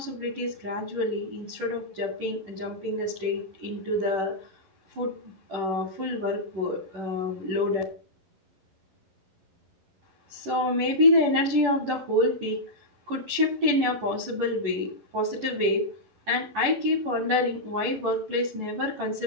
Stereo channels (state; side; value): late; left; 11 ms